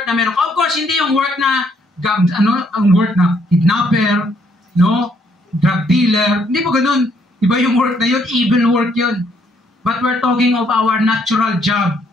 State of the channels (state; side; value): normal; both; correlation 0.69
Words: na meron. Of course, hindi yung work na ang work na kidnapper, drug dealer. Hindi po ganun. Iba yung work na yun, evil work yun. But we're talking of our natural job,